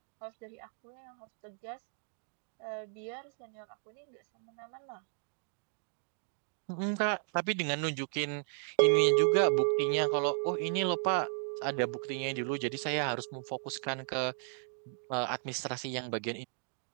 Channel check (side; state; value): left; silent; digital silence